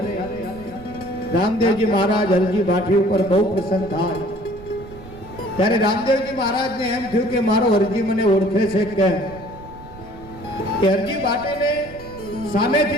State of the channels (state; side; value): noise; right; rumble, 18 dB below the sound